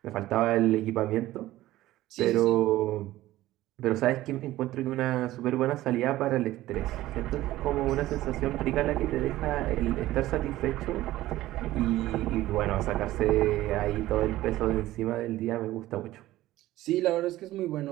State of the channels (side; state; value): left; quieter; 15.8 dB